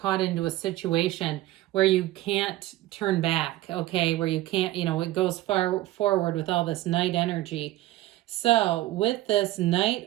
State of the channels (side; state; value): left; quieter; 16.5 dB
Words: into a situation where you can't turn back, okay? Where you can't, it goes far forward with all this night energy. So with this Knight